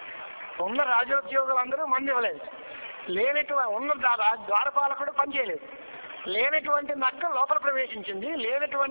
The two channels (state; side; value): inverted; both; correlation -1.00